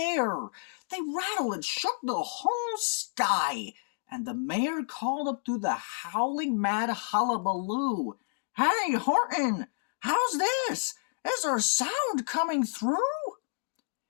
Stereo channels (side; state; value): right; silent; digital silence